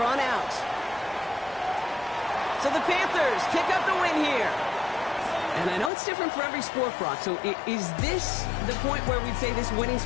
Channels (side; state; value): right; drops out; at 5.9 s